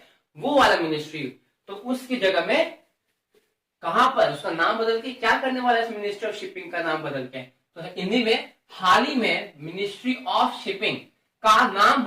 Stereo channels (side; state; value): both; identical; correlation 1.00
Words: वो वाला मिनिस्ट्री। तो उसकी जगह में कहां पर उसका नाम बदल के क्या करने वाला है? मिनिस्ट्री ऑफ शिपिंग का नाम बदल के, तो हिंदी में हाल ही में मिनिस्ट्री ऑफ शिपिंग का नाम